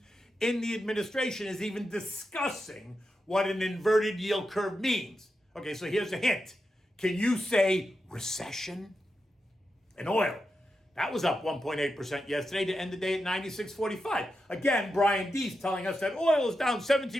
in the administration is even discussing what an inverted yield curve means. Okay, so here's a hint. Can you say recession? And oil, that was up 1.8% yesterday to end the day at 96.45. Again, Brian Deese telling us that oil is down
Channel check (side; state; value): both; normal; correlation 0.88